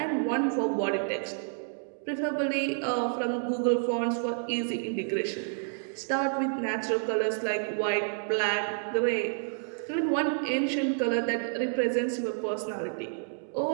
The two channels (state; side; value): silent; left; 58 dB below the other